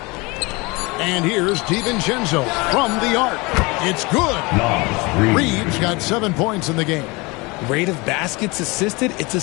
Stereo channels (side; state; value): right; quieter; 25.6 dB